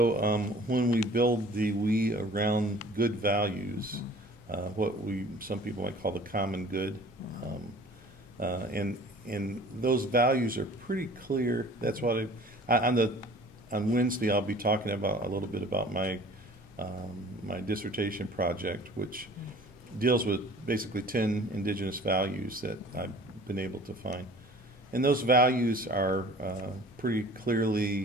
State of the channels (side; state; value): both; normal; correlation 0.47